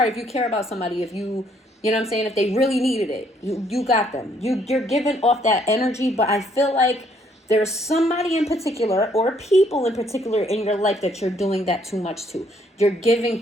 if you care about somebody, if you know what I'm saying, if they really needed it, you got them. You're giving off that energy, but I feel like there's somebody in particular or people in particular in your life that you're doing that too much to. You're giving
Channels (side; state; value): both; normal; correlation 0.67